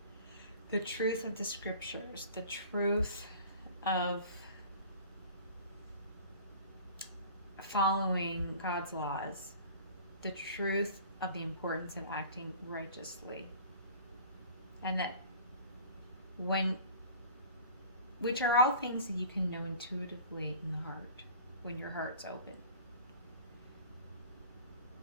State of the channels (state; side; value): inverted; both; correlation -0.44